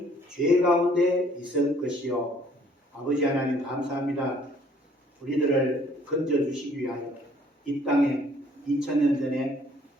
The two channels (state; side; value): normal; both; correlation 0.60